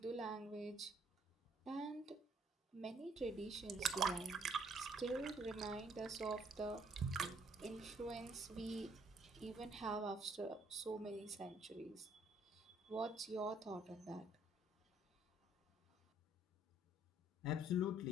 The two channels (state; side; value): normal; both; correlation 0.64